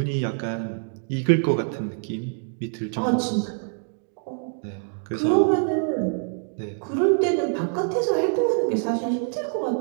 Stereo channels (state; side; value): silent; left; 60 dB below the other